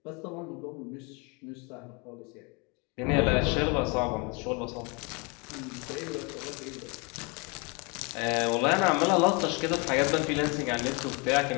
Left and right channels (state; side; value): quieter; right; 30.8 dB